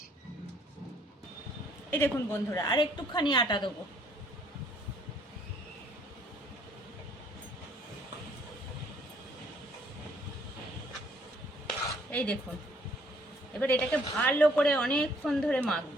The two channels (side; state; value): both; normal; correlation 0.63